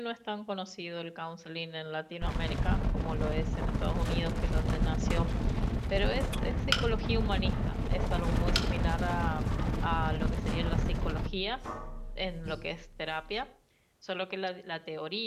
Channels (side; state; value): both; identical; correlation 1.00